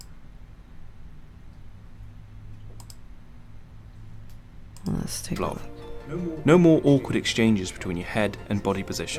Let's take a look. No more awkward exchanges between your head and body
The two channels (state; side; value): identical; both; correlation 1.00